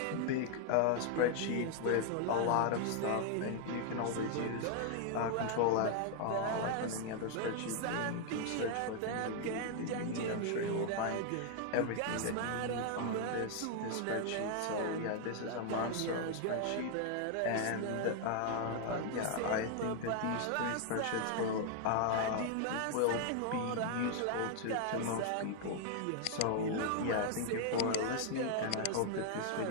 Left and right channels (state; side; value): different; both; correlation 0.00